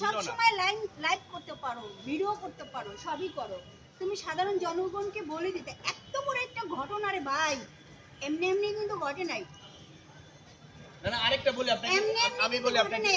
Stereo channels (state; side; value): identical; both; correlation 1.00